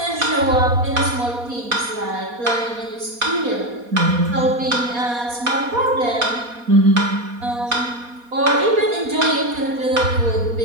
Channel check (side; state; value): left; late; 4.2 ms